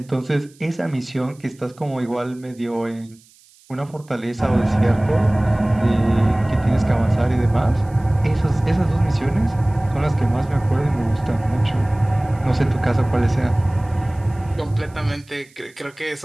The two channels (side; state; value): right; noise; hiss, 29 dB below the sound